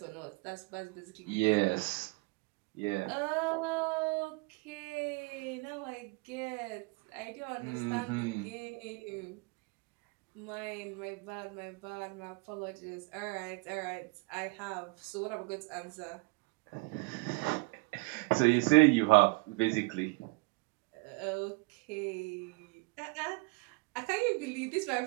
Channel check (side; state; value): left; quieter; 26.6 dB